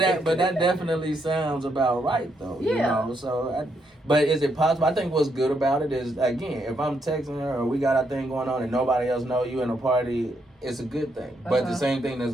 definitely sounds about right though. Yeah. You know, so. But is it possible? I think what's good about it is, again, if I'm texting her or we got our thing going on and nobody else know you in a party, it's a good thing. But the same thing that's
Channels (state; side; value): normal; both; correlation 0.77